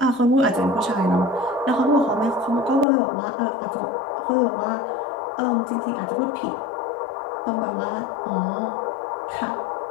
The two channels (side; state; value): right; drops out; at 2.9 s